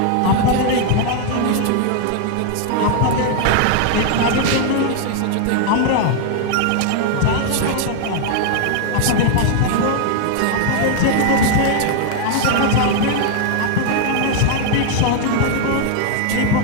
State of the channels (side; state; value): both; different; correlation 0.00